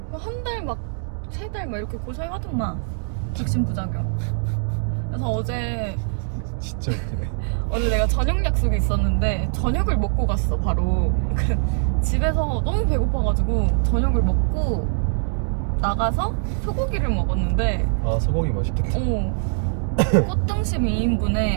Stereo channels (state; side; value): silent; left; digital silence